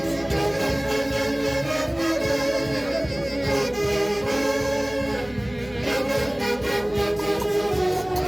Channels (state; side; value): noise; left; hum, 20 dB below the sound